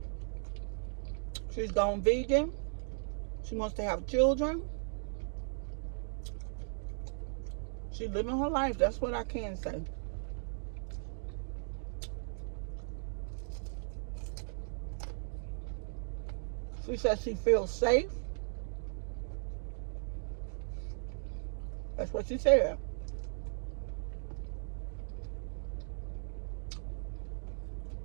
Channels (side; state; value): left; silent; digital silence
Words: She's gone vegan. She wants to have children. She's living her life. That's what I can say. She says she feels safe. That's what she said.